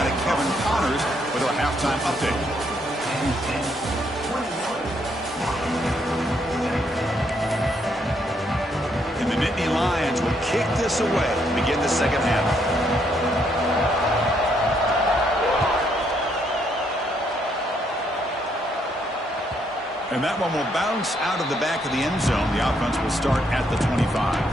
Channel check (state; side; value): normal; both; correlation 0.73